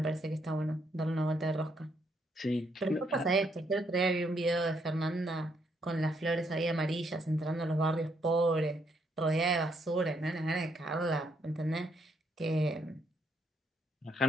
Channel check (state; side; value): normal; both; correlation 0.74